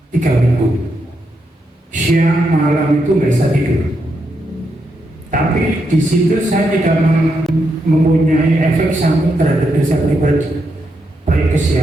3 minggu. Siang malam itu nggak bisa tidur. Tapi di situ saya tidak mempunyai efek samping terhadap diri saya pribadi. Baik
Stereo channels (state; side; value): normal; both; correlation 0.82